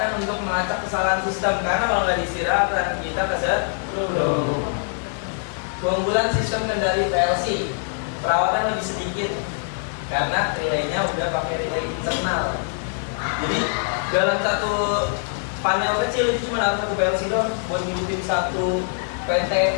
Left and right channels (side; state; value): right; silent; digital silence